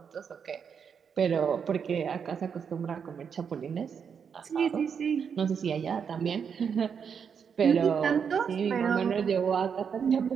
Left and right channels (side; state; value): left; quieter; 6.9 dB